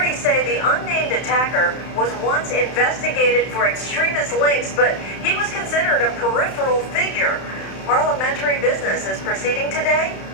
say the unnamed attacker was once investigated for extremist links, but he was considered a peripheral figure. Parliamentary business is proceeding today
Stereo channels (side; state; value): right; late; 31 ms